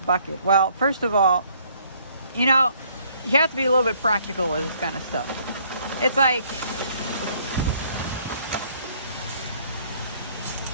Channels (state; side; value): inverted; both; correlation -0.63